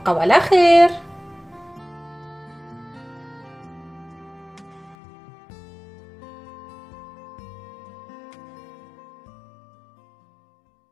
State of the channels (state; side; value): drops out; right; at 5.0 s